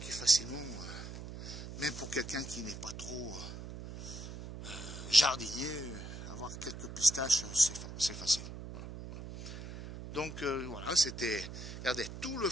facilement, même pour quelqu'un qui n'est pas trop jardinier, avoir quelques pistaches, c'est facile. Donc voilà, c'était, regardez, tout le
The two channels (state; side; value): noise; right; hum, 10 dB below the sound